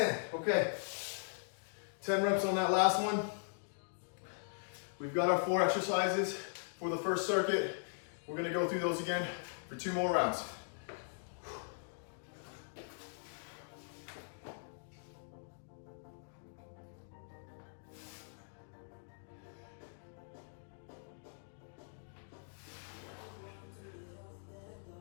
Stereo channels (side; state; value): right; silent; digital silence